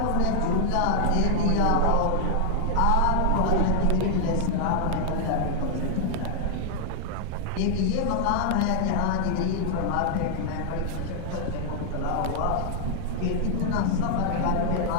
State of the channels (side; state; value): both; different; correlation 0.00